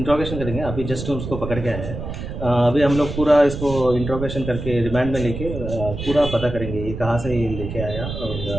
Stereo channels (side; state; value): right; noise; rumble, 7 dB below the sound